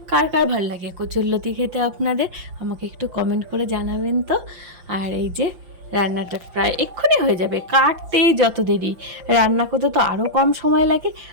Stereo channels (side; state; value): left; late; 5.8 ms